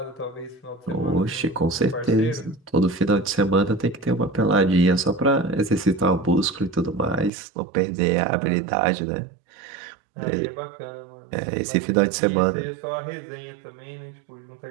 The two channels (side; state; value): left; drops out; at 7.3 s